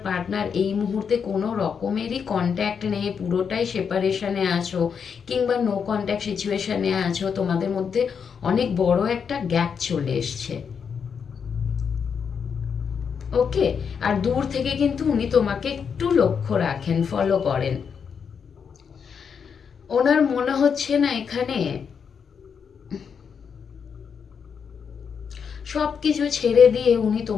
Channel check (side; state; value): right; quieter; 6.7 dB